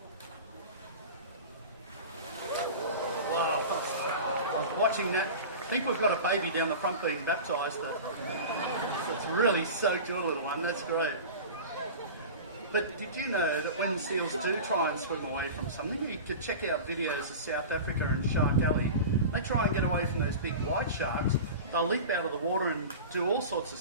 Wow, I was watching that. I think we've got a baby down the front being baptised. It's really soaked your little one, that's great. But did you know that when seals do try and swim away from something, you could check out videos of South Africa and Shark Alley. They try and get away from those big white sharks. They'll leap out of the water and do all sorts of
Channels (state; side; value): inverted; both; correlation -0.32